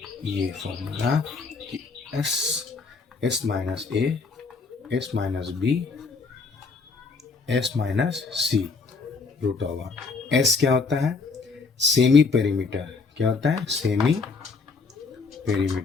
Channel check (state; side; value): quieter; right; 4.5 dB